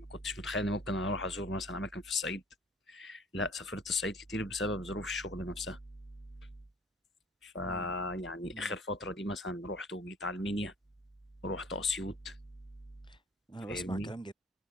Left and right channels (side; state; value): both; normal; correlation 0.51